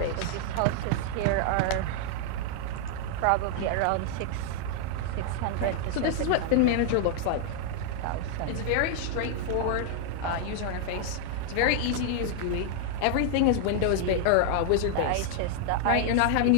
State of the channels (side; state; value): both; different; correlation 0.00